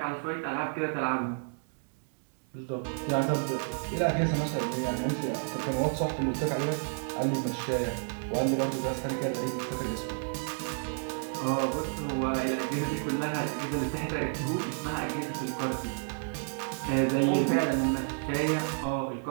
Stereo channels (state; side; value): silent; left; 57 dB below the other